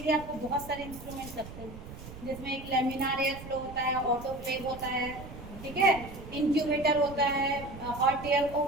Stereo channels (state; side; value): noise; right; rumble, 13 dB below the sound